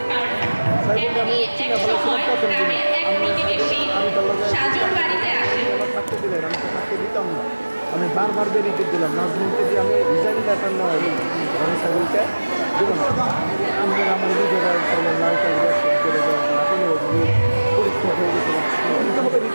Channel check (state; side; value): inverted; both; correlation -1.00